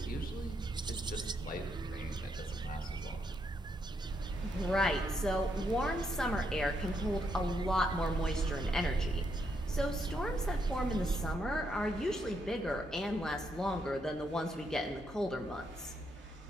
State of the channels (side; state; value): both; normal; correlation 0.78